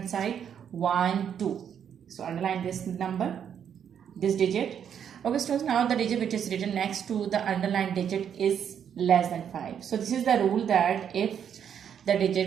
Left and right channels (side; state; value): left; quieter; 8.4 dB